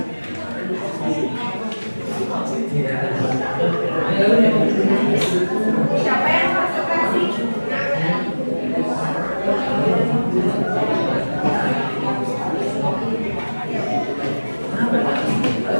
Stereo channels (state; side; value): inverted; both; correlation -1.00